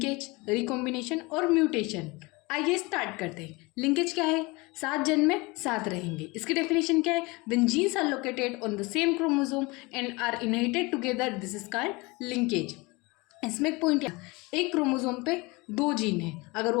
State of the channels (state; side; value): quieter; right; 24.8 dB